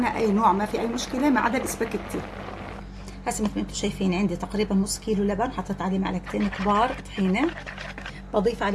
أي نوع ما في أي مشكلة ما عدا الإسباجيتي. هسه مثل ما انتم شايفين عندي تقريبا نص كيلو لبن، حطيت عليه معلقتين كبار طحينة، بضيف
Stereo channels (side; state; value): both; identical; correlation 1.00